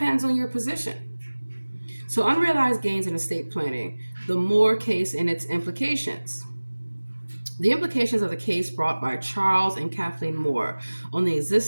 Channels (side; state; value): both; inverted; correlation -1.00